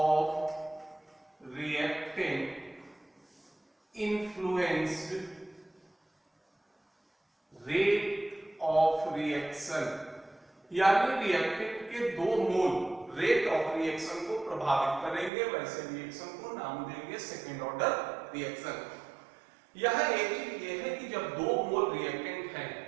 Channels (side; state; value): left; drops out; at 15.3 s